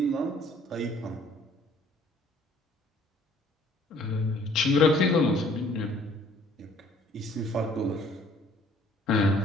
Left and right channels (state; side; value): normal; both; correlation 0.58